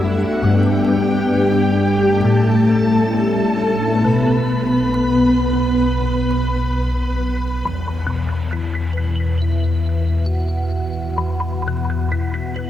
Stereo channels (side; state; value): both; normal; correlation 0.86